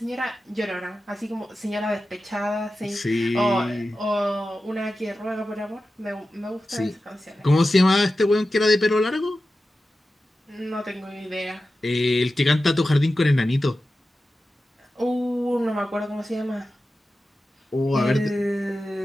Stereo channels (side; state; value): both; normal; correlation 0.93